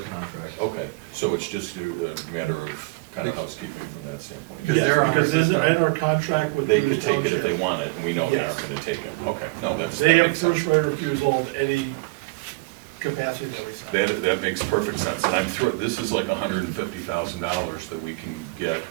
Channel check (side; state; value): left; quieter; 25.3 dB